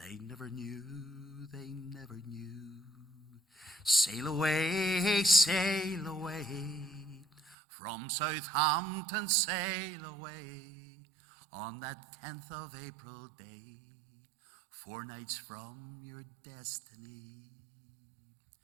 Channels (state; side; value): drops out; left; at 7.6 s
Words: never knew, they never knew. Sail away, from Southampton sail away, on that 10th of April day, 4 nights from your destiny.